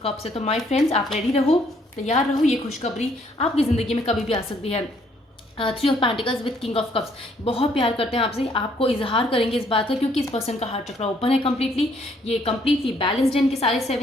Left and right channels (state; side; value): normal; both; correlation 0.66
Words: कप्स है। तो माय फ्रेंड्स, आप रेडी रहो, तैयार रहो, ये खुशखबरी आपकी ज़िंदगी में कभी भी आ सकती है। 3 of pentacles with king of cups, बहुत प्यार करते हैं आपसे, आपको इजहार करेंगे इस बात का, क्योंकि इस पर्सन का हार्ट चक्रा ओपन है कम्प्लीटली, ये कम्प्लीटली बैलेंस्ड है इनके सारे